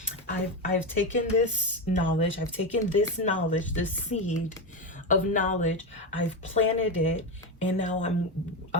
I've taken this knowledge, this seed of knowledge, I've planted it, and now I'm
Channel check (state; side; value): normal; both; correlation 0.13